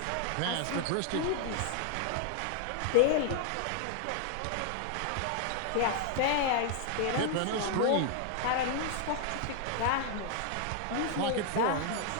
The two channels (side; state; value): both; different; correlation 0.00